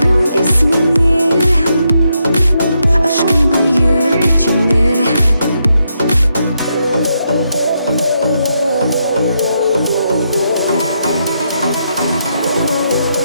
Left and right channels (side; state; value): both; inverted; correlation -0.81